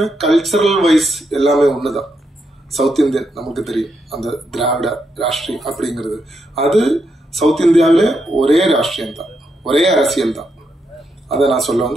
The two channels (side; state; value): both; normal; correlation 0.82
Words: கல்ச்சரல் வைஸ் எல்லாமே ஒண்ணுதான். சவுத் இந்தியன் நமக்கு தெரியும், அந்த திராவிட ராஷ்டிரியம் அப்படிங்கிறது அது சவுத் இந்தியாவிலே ஒரே ராஷ்டிரியம் தான், ஒரே அரசியல் தான். அதை நான் சொல்ல